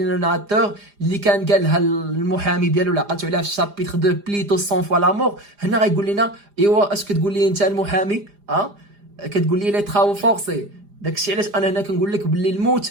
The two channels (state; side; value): late; left; 4.9 ms